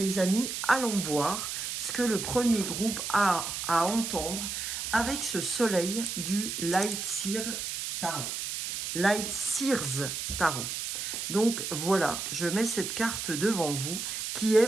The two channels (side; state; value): right; noise; hiss, 4 dB below the sound